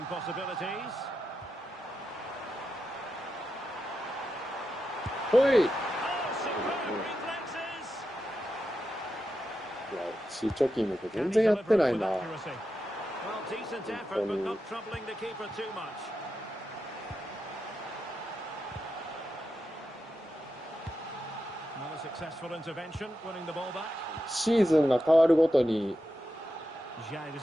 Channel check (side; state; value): both; normal; correlation 0.88